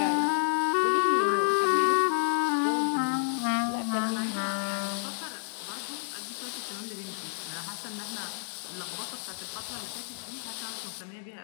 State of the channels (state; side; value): silent; right; 56 dB below the other